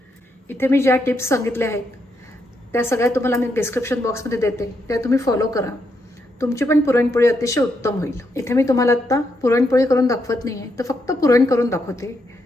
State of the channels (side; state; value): both; normal; correlation 0.79